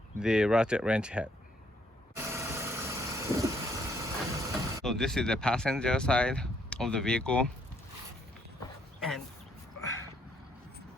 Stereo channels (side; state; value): both; normal; correlation 0.69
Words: the ratchet wrench head. So this is the passenger side of the vehicle, and